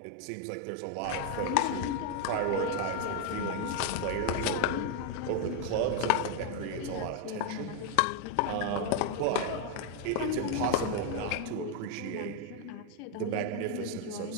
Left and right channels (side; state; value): both; different; correlation 0.01